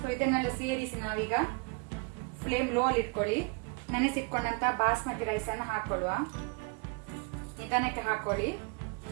ಸೊ ಇದನ್ನೆಲ್ಲ ಸೇರಿಸಿ ನಾವೀಗ ಫ್ಲೇಮ್ ಲೋ ಅಲ್ಲಿ ಇಟ್ಕೊಳ್ಳಿ. ನೆನೆಸಿಟ್ಕೊಂಡಂತ ಬಾಸ್ಮತಿ ರೈಸ್ ಅನ್ನು ಹಾಕೊಳ್ಳುವ. ನಿಧಾನಕ್ಕೆ ಹಾಕೊಳ್ಳಿ.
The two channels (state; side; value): quieter; left; 32.0 dB